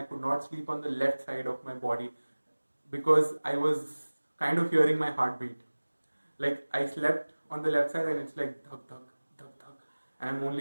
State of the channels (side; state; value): both; inverted; correlation -1.00